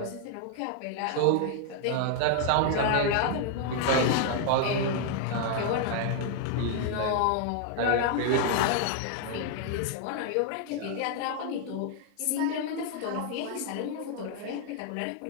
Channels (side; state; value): both; different; correlation 0.00